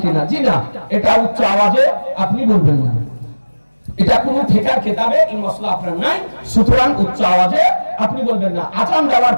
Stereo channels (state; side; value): inverted; both; correlation -1.00